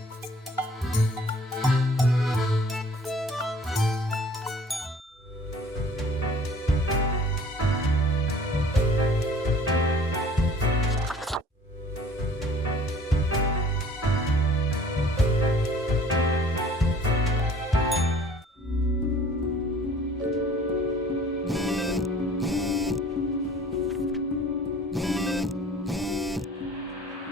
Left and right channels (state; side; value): normal; both; correlation 0.51